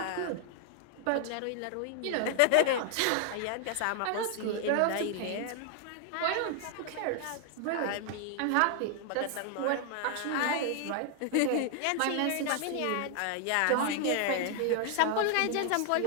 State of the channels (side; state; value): both; different; correlation 0.00